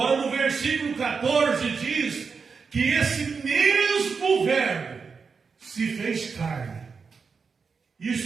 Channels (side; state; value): left; quieter; 5.3 dB